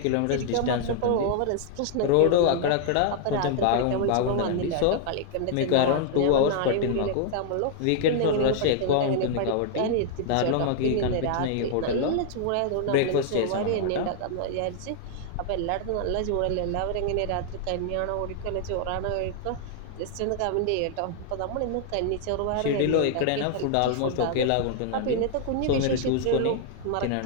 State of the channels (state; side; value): different; both; correlation 0.00